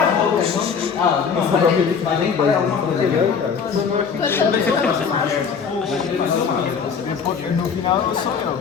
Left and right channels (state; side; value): quieter; right; 6.3 dB